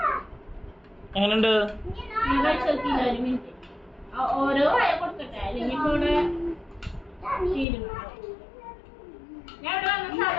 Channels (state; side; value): drops out; right; at 7.7 s